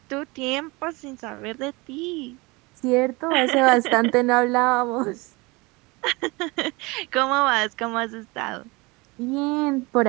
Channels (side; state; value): left; quieter; 25.0 dB